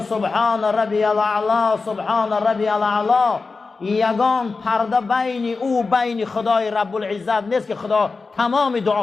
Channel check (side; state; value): right; quieter; 4.2 dB